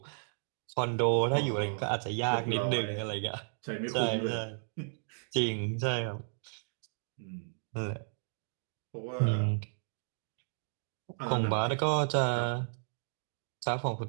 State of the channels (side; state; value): left; silent; digital silence